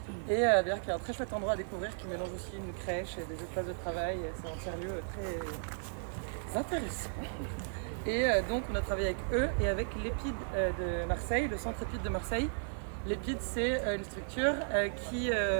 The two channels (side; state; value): left; silent; 54 dB below the other